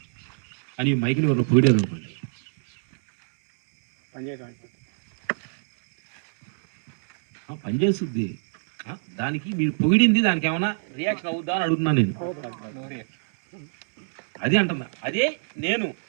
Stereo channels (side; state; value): left; silent; 62 dB below the other